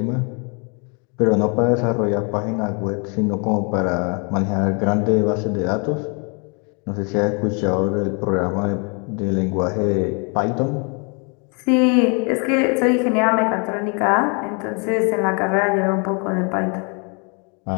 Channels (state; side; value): quieter; right; 35.2 dB